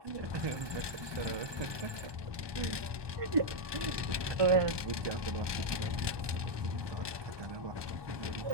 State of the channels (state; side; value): late; left; 1.2 ms